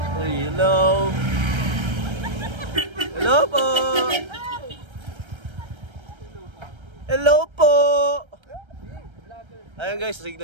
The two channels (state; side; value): late; left; 1.3 ms